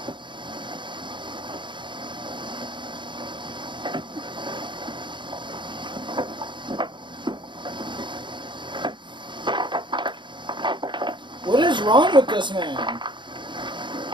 What is wrong with this man?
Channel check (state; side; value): late; left; 0.23 ms